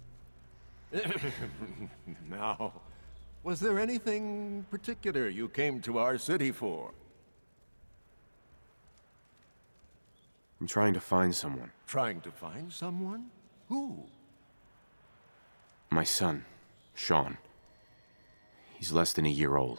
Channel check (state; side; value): inverted; both; correlation -1.00